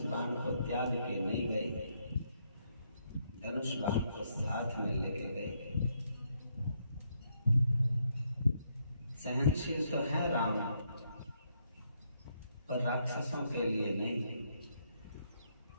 बाण को त्याग के नहीं गए, धनुष बाण को साथ में लेके गए। सहनशील तो है राम, पर राक्षसों के लिए नहीं।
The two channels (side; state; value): both; inverted; correlation -0.75